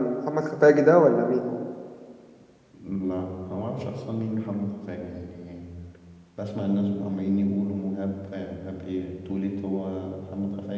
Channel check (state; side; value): identical; both; correlation 1.00